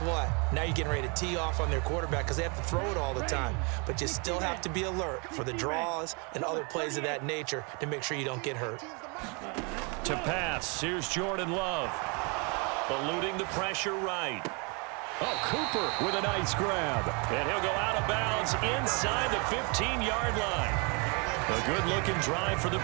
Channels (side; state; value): left; quieter; 32.7 dB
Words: what? Now you're getting ready to tee off on their quarterback because they have to throw it all the time. But you still have to be alert for the draws and other plays of that nature to make sure you don't get hurt. To pass, here's Jordan Love. Eluding the pressure right. Oh, Cooper with a nice grab. And he'll go out of bounds inside the 15-yard line. A good-looking drive for the